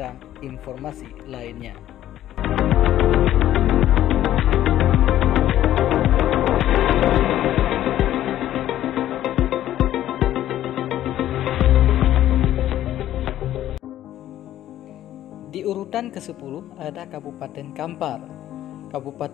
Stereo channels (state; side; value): quieter; right; 12.7 dB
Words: informasi lainnya. Di urutan ke-10 ada Kabupaten Kampar.